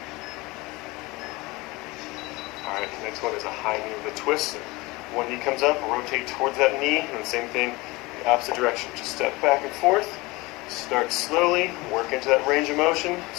Alright, the next one is a high knee with a twist. One knee comes up, rotate towards that knee, and then same thing, the opposite direction. Just step back and forth. Start slowly, work into that range of motion.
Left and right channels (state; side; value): quieter; right; 22.8 dB